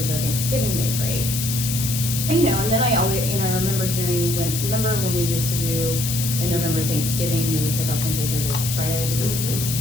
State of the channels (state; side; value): noise; left; hiss, 3 dB below the sound